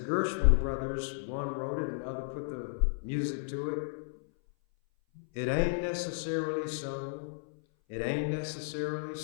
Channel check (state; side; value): silent; right; 56 dB below the other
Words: Gershwin brothers, one wrote it and the other put the music to it, it ain't necessarily so. It ain't necessarily